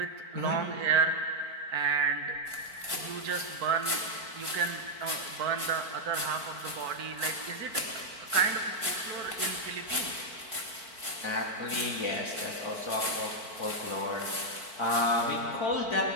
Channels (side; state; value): left; late; 4.5 ms